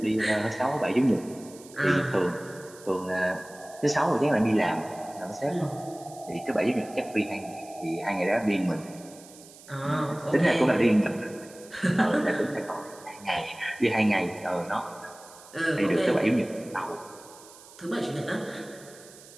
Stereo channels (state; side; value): noise; right; hiss, 21 dB below the sound